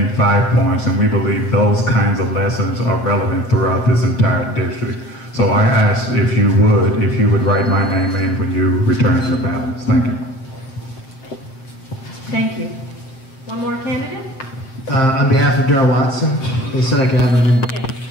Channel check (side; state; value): right; late; 7.6 ms